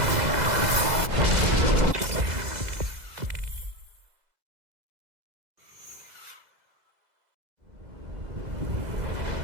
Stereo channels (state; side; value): late; left; 2.0 ms